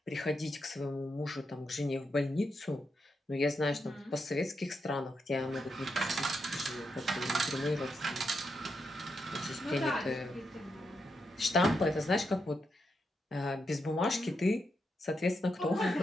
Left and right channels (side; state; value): both; normal; correlation 0.83